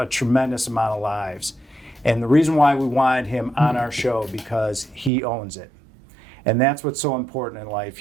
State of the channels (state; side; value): drops out; left; at 5.1 s